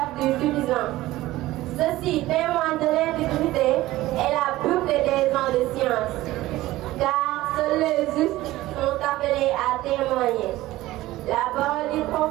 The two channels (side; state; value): left; quieter; 16.9 dB